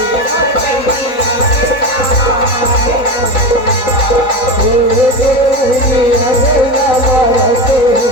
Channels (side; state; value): right; late; 3.9 ms